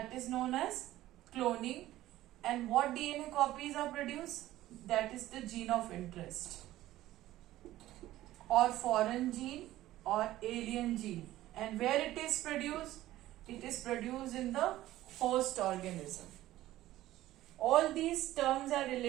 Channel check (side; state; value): left; quieter; 15.1 dB